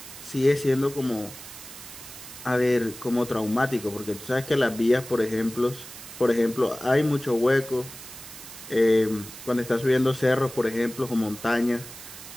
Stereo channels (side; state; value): right; noise; hiss, 14 dB below the sound